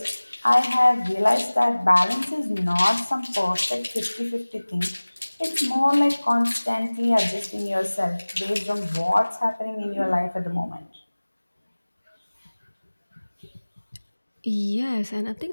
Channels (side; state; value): both; inverted; correlation -1.00